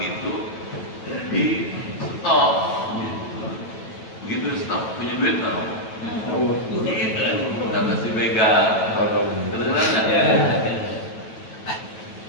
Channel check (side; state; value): right; late; 9.1 ms